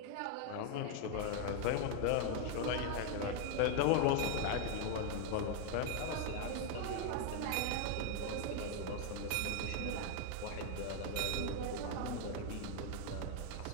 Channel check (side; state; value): both; different; correlation 0.01